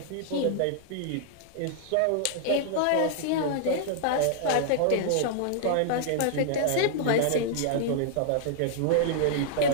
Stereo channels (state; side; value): different; both; correlation -0.01